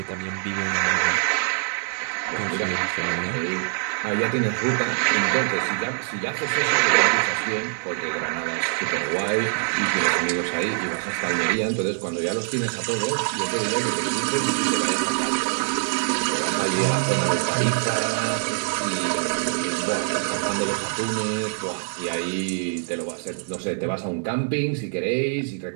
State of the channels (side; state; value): left; silent; digital silence